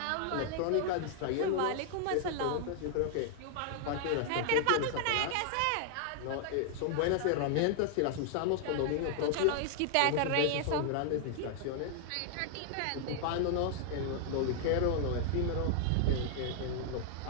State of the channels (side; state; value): both; different; correlation 0.00